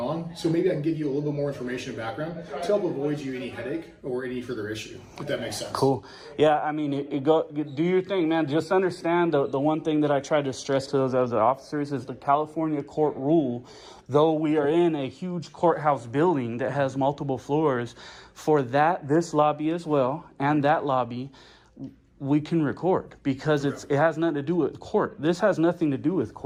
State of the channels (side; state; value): both; identical; correlation 1.00